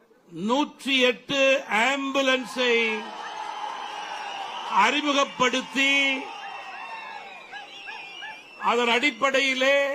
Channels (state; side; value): identical; both; correlation 1.00